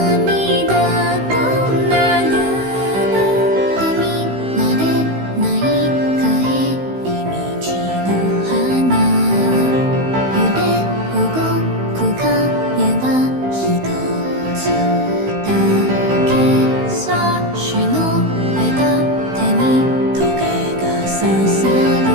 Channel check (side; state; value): left; late; 16 ms